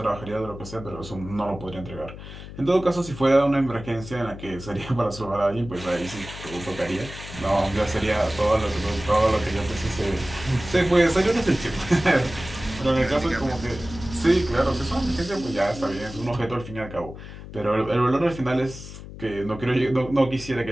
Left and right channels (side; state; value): left; noise; hum, 13 dB below the sound